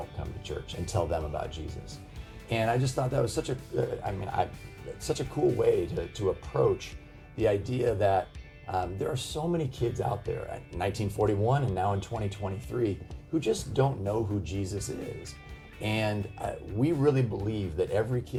come to church and tell them about Jesus. And I just thought that was such a cool way to approach the idea that there are so many kids out there at 1941 and now in 2023 who just don't know who Jesus is. And we really believe that every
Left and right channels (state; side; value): identical; both; correlation 1.00